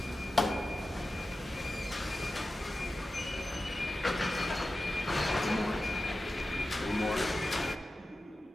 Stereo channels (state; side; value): normal; both; correlation 0.93